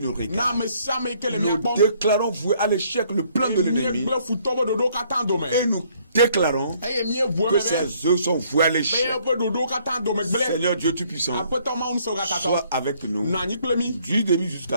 regardent. Nous déclarons voué à l'échec le plan de l'ennemi et nous déclarons que ces œuvres sont vouées à l'échec. Seigneur Dieu Tout-Puissant, sois avec nous du début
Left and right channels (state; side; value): inverted; both; correlation -0.64